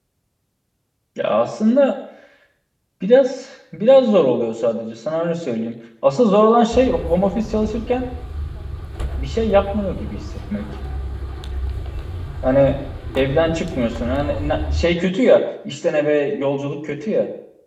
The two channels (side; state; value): both; identical; correlation 1.00